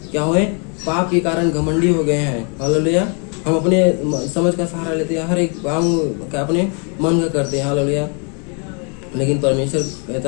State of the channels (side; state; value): right; quieter; 37.7 dB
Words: क्या हुए? पाप के कारण घमंडी हो गए हैं। हालेलुया। हम अपने समझ का सहारा लेते हैं, हर एक काम का अपने मन का करते हैं। हालेलुया। लेकिन परमेश्वर